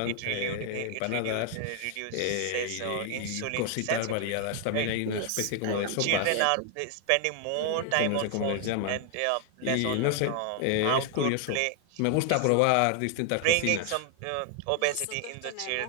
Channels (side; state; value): both; different; correlation 0.00